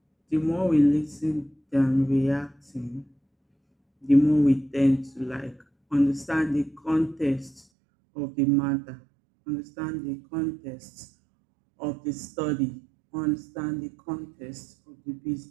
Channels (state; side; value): drops out; left; at 7.7 s